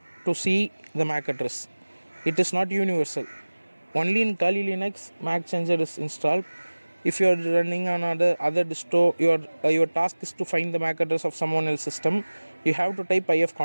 to see the MAC address. It is not universal. Only in Kali Linux Mac changer is installed. If you are running on other disto, your task is to find the MAC address of someone else's system. You have to type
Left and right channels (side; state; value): both; inverted; correlation -1.00